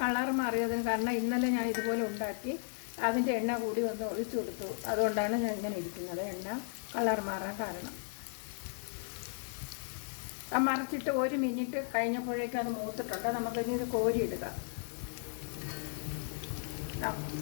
കളർ മാറിയതിന് കാരണം ഇന്നലെ ഞാൻ ഇതുപോലെ ഉണ്ടാക്കി അതിൻ്റെ എണ്ണ കൂടി വന്ന് ഒഴിച്ചു കൊടുത്തു. അതുകൊണ്ടാണ് ഞാൻ ഇങ്ങനെ ഇരിക്കുന്നത്. എണ്ണ കളർ മാറാൻ കാരണം. ആ മറിച്ചിട്ട് 1 മിനിറ്റ് കഴിഞ്ഞപ്പോഴേക്കും അത് മൂത്തിട്ടുണ്ട്. നമുക്കിനി ഇത് കോരിയിടുക.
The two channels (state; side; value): silent; right; digital silence